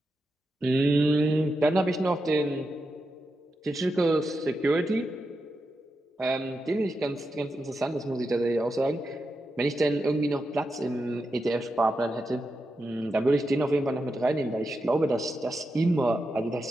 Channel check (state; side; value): normal; both; correlation 0.88